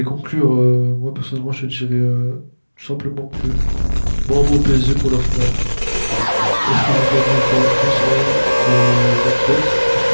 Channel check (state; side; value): inverted; both; correlation -1.00